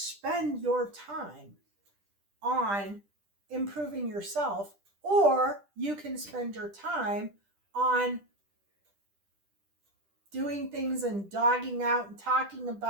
your time on improving yourself, or you can spend your time on doing things and dogging out and talking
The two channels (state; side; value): late; left; 10 ms